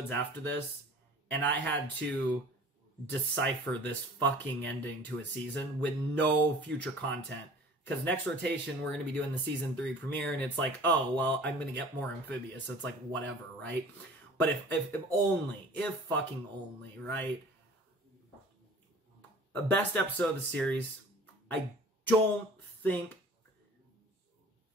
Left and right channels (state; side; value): normal; both; correlation 0.45